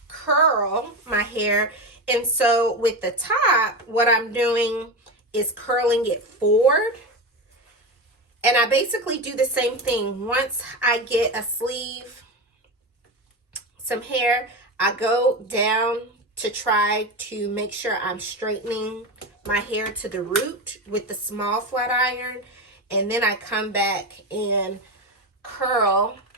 curl my hair, and so with the top, what I'm doing is curling it forward, and I basically do the same thing. Once I get a sleeve, some hair, I go down to try to make sure I'm straightening my hair to the root with the small flat iron, and then I come back and curl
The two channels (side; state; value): both; normal; correlation 0.19